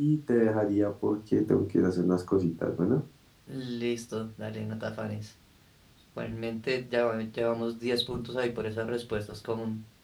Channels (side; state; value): both; identical; correlation 1.00